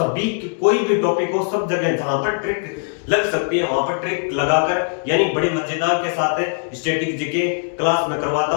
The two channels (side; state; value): right; silent; digital silence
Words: कोई भी टॉपिक हो सब जगह जहां पर ट्रिक लग सकती है वहां पर ट्रिक लगाकर यानी बड़े मजेदार के साथ स्टैटिक जीके क्लास में करवाता